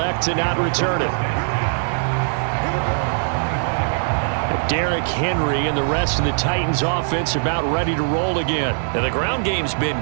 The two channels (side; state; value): left; silent; 56 dB below the other